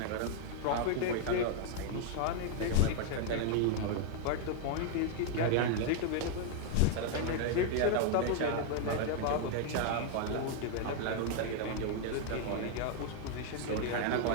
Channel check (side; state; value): both; different; correlation 0.00